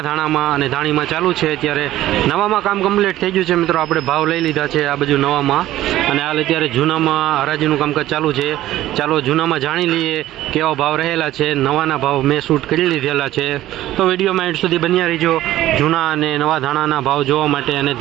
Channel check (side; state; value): left; quieter; 14.5 dB